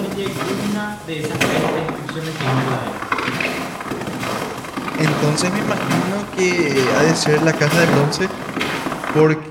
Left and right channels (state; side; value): identical; both; correlation 1.00